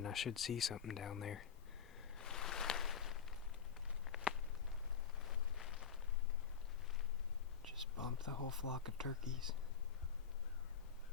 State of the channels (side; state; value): right; quieter; 7.0 dB